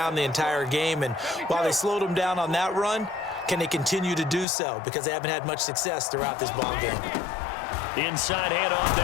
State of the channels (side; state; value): right; drops out; at 4.5 s